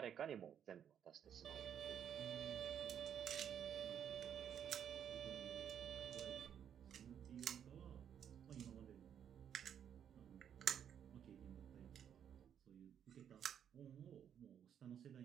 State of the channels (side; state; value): left; quieter; 8.9 dB